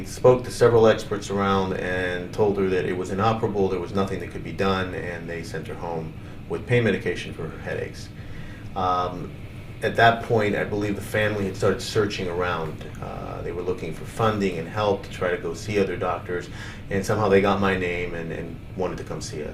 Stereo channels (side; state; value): both; identical; correlation 1.00